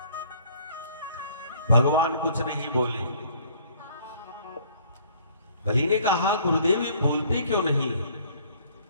भगवान कुछ नहीं बोले। बलि ने कहा, गुरुदेव ये बोलते क्यों नहीं?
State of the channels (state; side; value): inverted; both; correlation -0.58